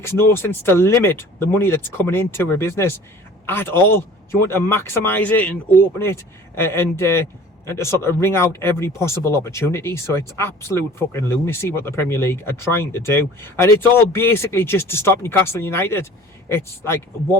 no sense to limit the money that's coming into a business at all. You want to maximise it and open it and to sort of wring out every possible opportunity. So it's absolute fucking lunacy what the Premier League are trying to do. And it's all basically just to stop Newcastle United. It's like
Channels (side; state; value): both; normal; correlation 0.46